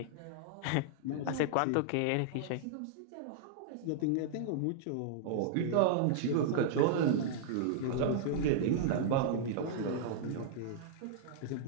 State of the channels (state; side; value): different; both; correlation -0.01